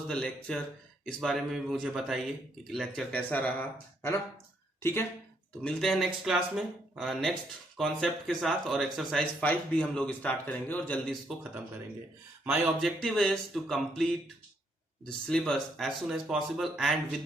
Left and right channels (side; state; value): both; normal; correlation 0.73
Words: the lecture? इस बारे में भी मुझे बताइए कि लेक्चर कैसा रहा, है ना. ठीक है, तो मिलते हैं नेक्स्ट क्लास में नेक्स्ट कॉन्सेप्ट के साथ, और एक्सरसाइज 5 भी हम लोग स्टार्ट करेंगे और जल्दी इसको खत्म करेंगे. My objective is to complete the syllabus as soon as possible and with